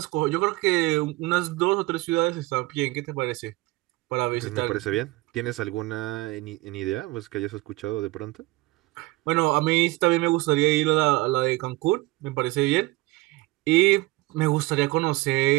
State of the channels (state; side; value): quieter; left; 20.5 dB